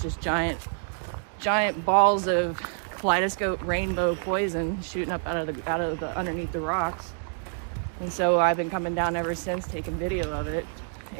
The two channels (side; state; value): left; silent; 58 dB below the other